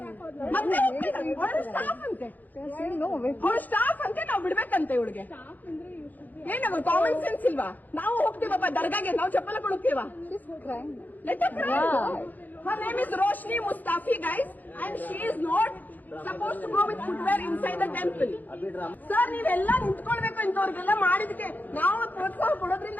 ಮತ್ತೆ ಅವಳು ಸ್ಟಾಫ್ ಅಂತೆ, ಅವಳು ಸ್ಟಾಫ್ ಅಂತೆ, ನಾವು ಬಿಡ್ಬೇಕಂತೆ ಇವಳಿಗೆ. ಏನವ ಕಾಮನ್ ಸೆನ್ಸ್ ಇಲ್ವಾ? ನಾವು ಹೋಗ್ತೀವಪ್ಪ ದರ್ಗಾಗೆ, ನಾವು ಚಪ್ಪಲ ಕೊಡುತ್ತೀವ. Her name is Roshni Mustafi, guys, and she is not supposed to go with footwear inside the temple. Sir, ನೀವೆಲ್ಲ ನಿಂತ್ಕೊಳ್ಬೇಕು. ಇಂಥವ್ರಿಗೆಲ್ಲ ಮಾಡಿದಕ್ಕೆ ನಾವು ಪ್ರೋತ್ಸಾಹ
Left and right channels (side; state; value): right; late; 0.083 ms